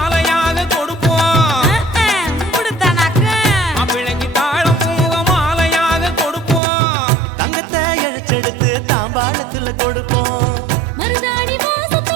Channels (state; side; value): drops out; left; at 6.6 s